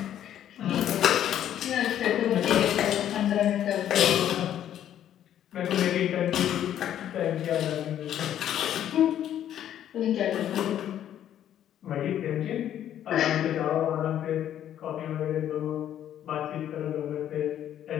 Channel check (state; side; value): quieter; right; 10.8 dB